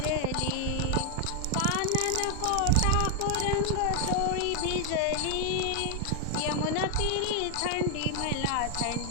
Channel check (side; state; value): both; different; correlation 0.00